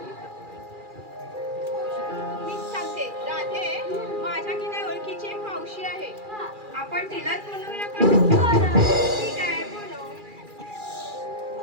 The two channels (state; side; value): late; left; 2.4 ms